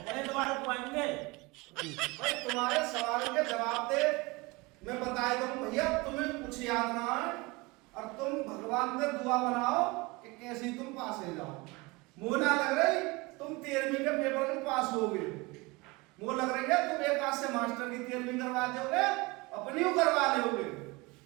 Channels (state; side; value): quieter; left; 24.2 dB